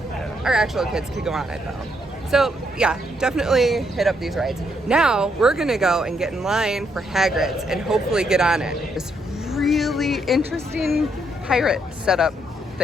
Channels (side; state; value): both; normal; correlation 0.75